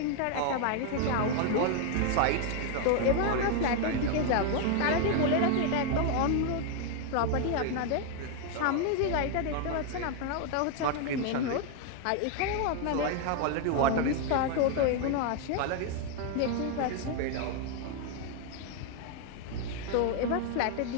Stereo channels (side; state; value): both; different; correlation 0.01